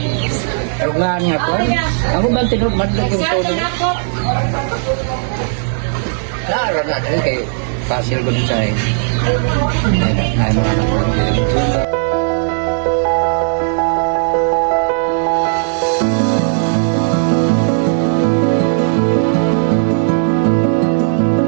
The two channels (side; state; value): left; silent; digital silence